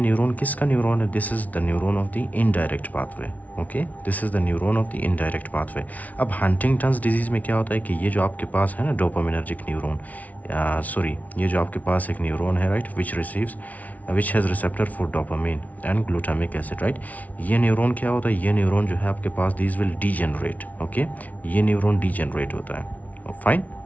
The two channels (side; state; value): right; late; 0.072 ms